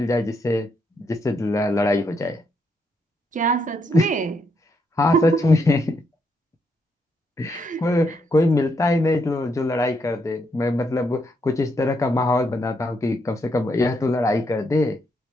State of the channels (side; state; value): both; normal; correlation 0.77